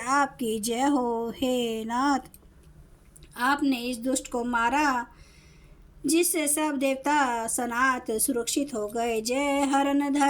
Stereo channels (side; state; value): both; identical; correlation 1.00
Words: जय हो। हे नाथ, आपने इस दुष्ट को मारा जिससे सब देवता सनात सुरक्षित हो गए। जय हरन